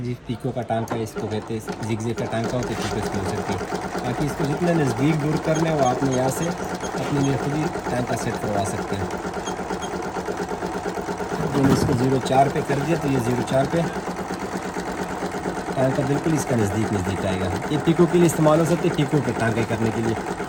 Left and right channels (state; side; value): identical; both; correlation 1.00